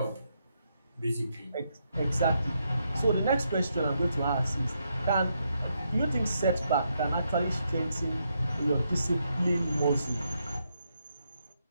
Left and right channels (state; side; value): inverted; both; correlation -0.79